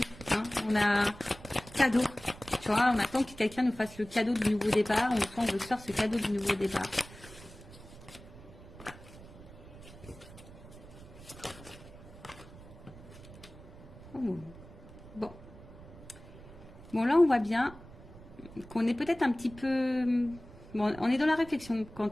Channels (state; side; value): noise; right; rumble, 18 dB below the sound